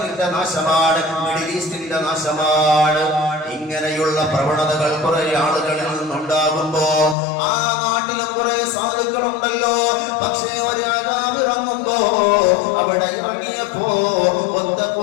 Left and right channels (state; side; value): drops out; right; at 7.2 s